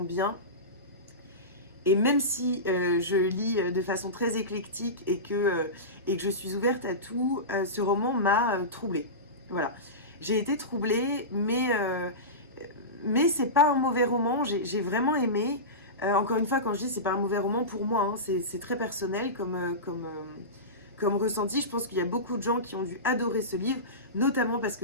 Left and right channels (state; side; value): normal; both; correlation -0.20